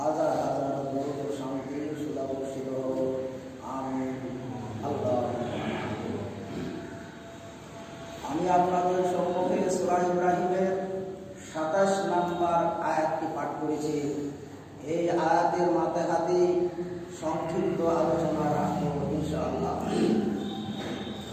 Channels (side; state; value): both; identical; correlation 1.00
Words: হাজার দরুদ ও শান্তির সুধা বর্ষিত হোক। আমিন। আমি আপনাদের সম্মুখে সূরা ইব্রাহিমের ২৭ নম্বর আয়াতটি পাঠ করেছি। এই আয়াতের মাঝখানে সংক্ষিপ্ত আলোচনা রাখবো ইনশাআল্লাহ।